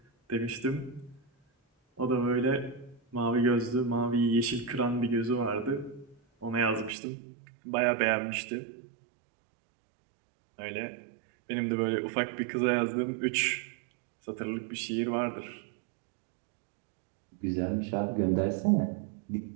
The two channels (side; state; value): left; drops out; at 7.0 s